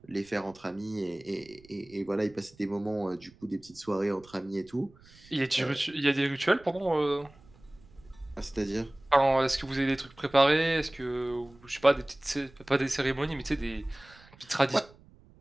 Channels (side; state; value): right; noise; rumble, 26 dB below the sound